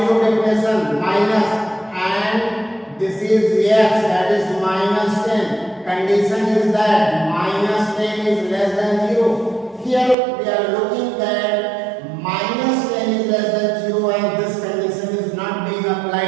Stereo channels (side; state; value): left; drops out; at 10.2 s